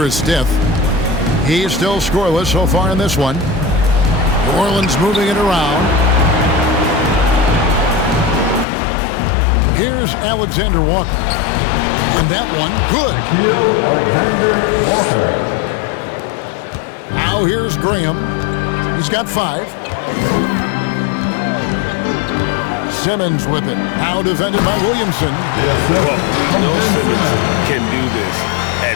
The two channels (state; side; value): drops out; right; at 8.7 s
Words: is Stiff. He's still scoreless so far in this one. New Orleans moving it around. Here's Alexander Walker. And that one, good. Alexander Walker. Now here's Graham. He's got 5. Simmons with it. Now defended by Williamson. Well, we know Simmons can do this.